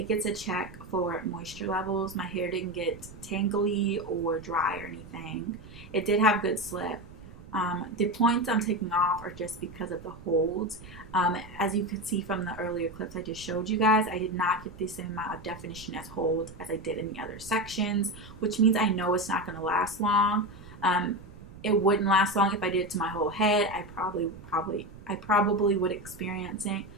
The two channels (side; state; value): right; noise; rumble, 17 dB below the sound